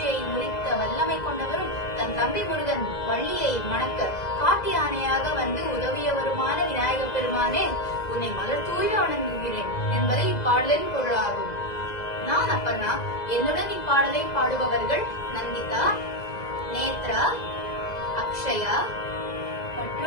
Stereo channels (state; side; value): late; right; 2.0 ms